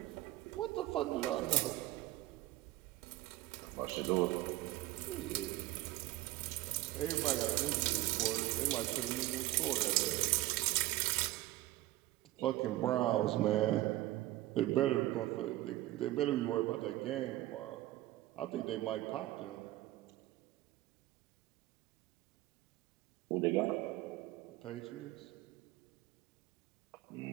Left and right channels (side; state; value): left; quieter; 16.8 dB